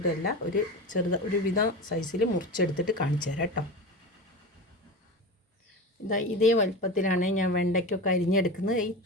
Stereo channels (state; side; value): normal; both; correlation 0.27